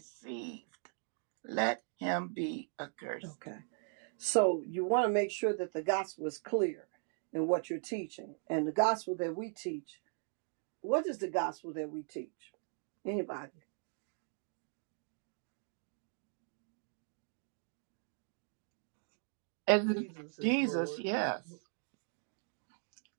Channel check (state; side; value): silent; left; 52 dB below the other